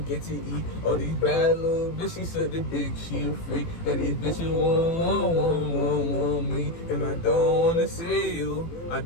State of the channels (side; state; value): right; late; 18 ms